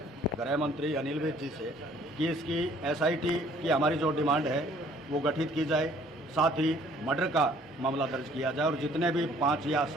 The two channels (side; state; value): both; normal; correlation 0.58